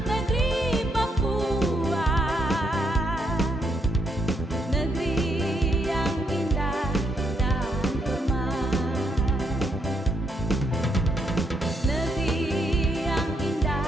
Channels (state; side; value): normal; both; correlation 0.76